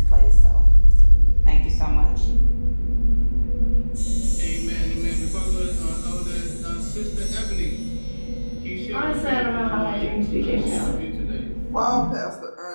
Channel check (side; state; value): both; inverted; correlation -1.00